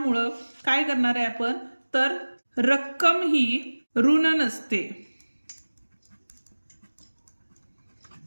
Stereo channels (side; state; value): both; inverted; correlation -1.00